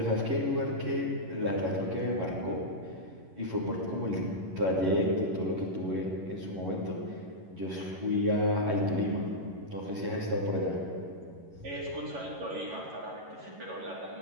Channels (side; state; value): left; late; 11 ms